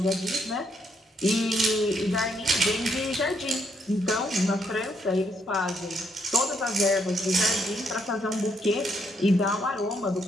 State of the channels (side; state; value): both; normal; correlation 0.74